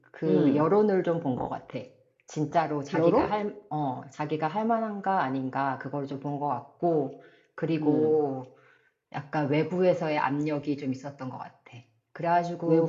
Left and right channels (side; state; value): both; identical; correlation 1.00